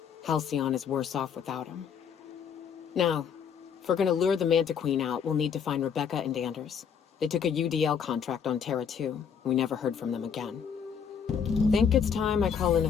Halcyon is worse off without him. Now, if we're gonna lure the Manta Queen out, we'll need to find Rebecca and Anders. They took a UDL contract on Terra 2. We never heard from them again. Think it's time I call in a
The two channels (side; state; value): right; quieter; 7.2 dB